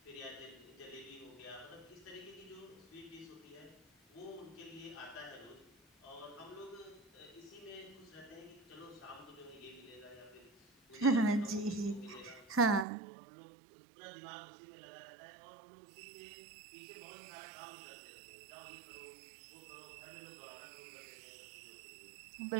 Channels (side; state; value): left; drops out; at 12.9 s